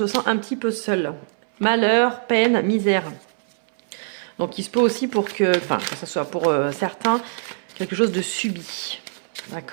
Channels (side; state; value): left; silent; 63 dB below the other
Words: sent un petit peu seul. Malheur, peine, misère. Donc, il se peut aussi que ce soit pour certains, quelque chose de subi.